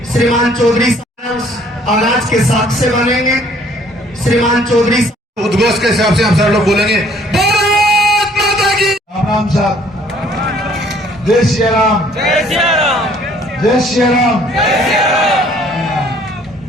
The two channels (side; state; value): both; normal; correlation 0.59